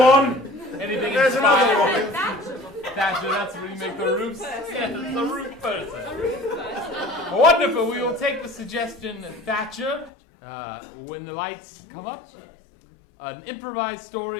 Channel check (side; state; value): right; drops out; at 10.1 s